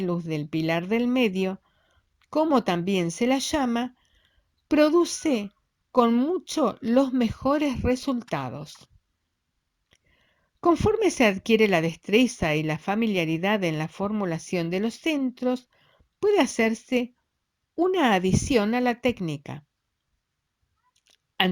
luz del pilar del medio, como también se la llama, produce con mucho los mejores resultados. Conforme se adquiere la destreza y la familiaridad en la formulación de los centros, puede hacerse una adición a la técnica.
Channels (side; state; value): both; identical; correlation 1.00